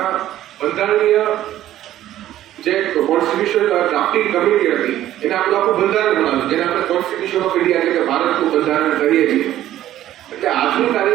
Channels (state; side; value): quieter; left; 13.0 dB